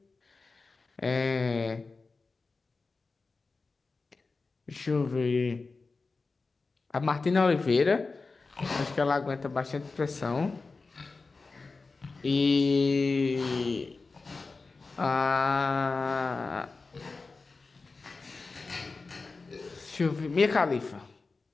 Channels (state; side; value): quieter; right; 4.0 dB